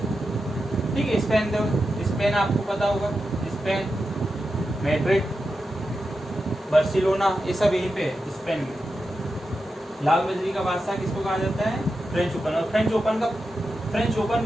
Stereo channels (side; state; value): both; normal; correlation 0.89